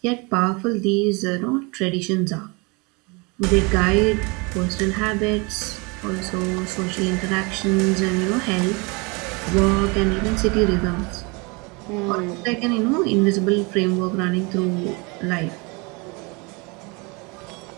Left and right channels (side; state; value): left; quieter; 28.6 dB